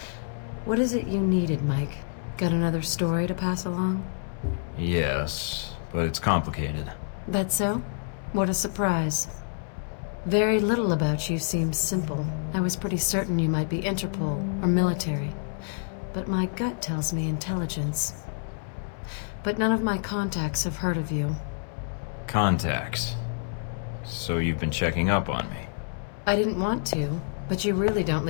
What is it you needed, Mike? Got another story to pass along? Yes, but it's complicated. That's so? What a surprise. Very little about you seems simple. I was pretty certain you might be Interpol or military. But my gut tells me intelligence. But none of my contacts have heard of you. Contacts? So you've been checking up on me? I didn't want to, but you really don't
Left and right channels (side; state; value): right; silent; 60 dB below the other